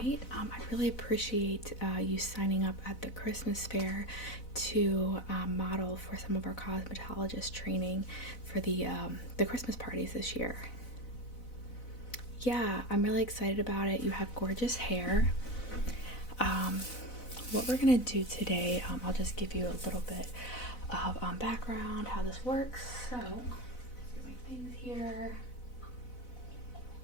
I really appreciate you signing up at the Christmas fair to model for some of our cosmetologist training for the Christmas parties this year. Yeah, I'm really excited about it. You have gorgeous hair. What we're gonna do today, I'll just give you a little bit of background, how this works. So, let's get my things here.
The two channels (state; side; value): late; right; 4.0 ms